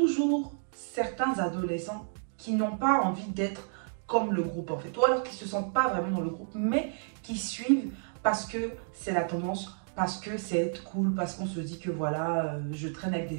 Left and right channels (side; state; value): left; silent; digital silence